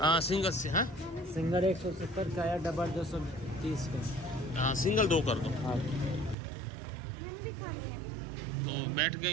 सिंगल से हैं, सिंगल 170 का या डबल 230 का? हाँ, सिंगल 2 कर दो। तो बैठ गए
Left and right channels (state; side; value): drops out; left; at 6.4 s